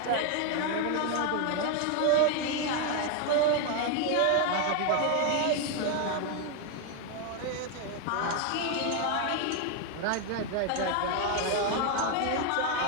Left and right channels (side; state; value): both; different; correlation 0.01